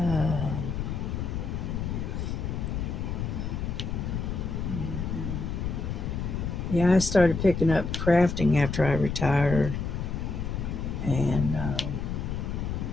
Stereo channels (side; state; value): left; noise; rumble, 3 dB below the sound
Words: yeah, I started picking up crafting after I retired, and